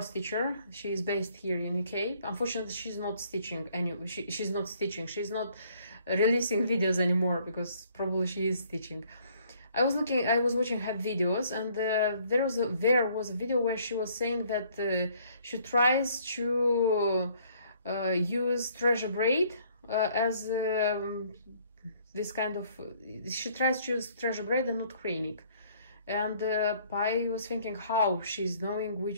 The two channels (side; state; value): both; inverted; correlation -0.62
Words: stitcher. She is based here in UK. Unfortunately, she's not stitching she's not stitching. She's not releasing videos anymore, because probably she is stitching. I was watching her videos, and there was a video where she was saying that she tries to use treasure braid as this kind of, she tries to use treasure braid and not cranic. And I was thinking how she's knowing